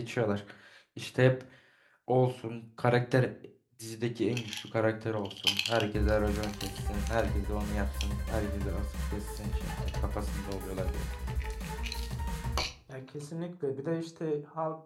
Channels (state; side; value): identical; both; correlation 1.00